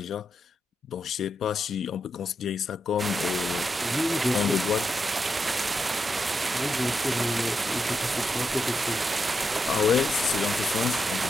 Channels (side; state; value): both; normal; correlation 0.84